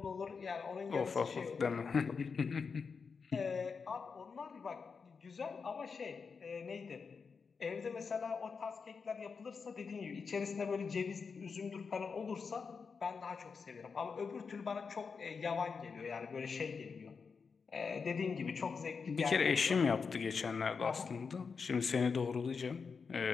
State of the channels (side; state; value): right; quieter; 5.4 dB